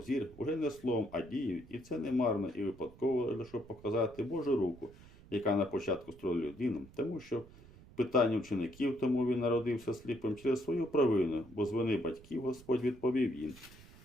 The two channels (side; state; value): right; noise; rumble, 21 dB below the sound